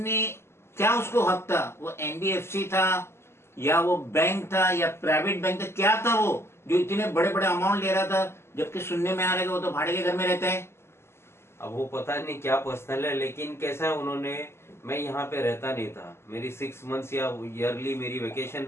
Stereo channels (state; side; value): late; right; 0.12 ms